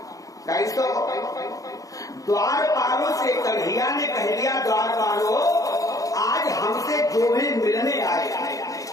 कैसो द्वारपालों से कन्हैया ने कह दिया, द्वारपालों आज हमसे जो भी मिलने आए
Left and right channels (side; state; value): right; late; 0.17 ms